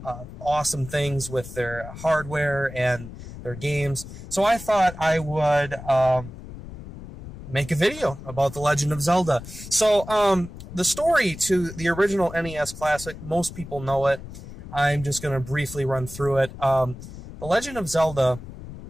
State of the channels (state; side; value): noise; left; rumble, 13 dB below the sound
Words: awesome things with their hardware and their games. So I thought I would make a video about The Legend of Zelda. So the story to the original NES classic, most people know it. I'm just going to briefly run through it. The Legend of Zelda